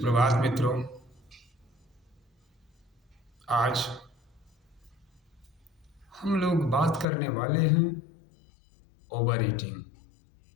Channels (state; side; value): drops out; right; at 7.1 s